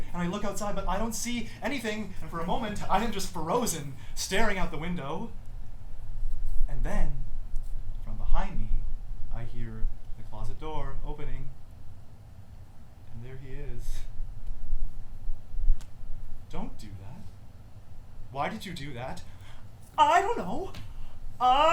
and I look outside, but I don't see anything. And for a moment, I am just frozen, staring out the window. And then, from behind me, I hear the closet door opening. And there he is. Don't do that. Why did you do that? I don't know.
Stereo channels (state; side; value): identical; both; correlation 1.00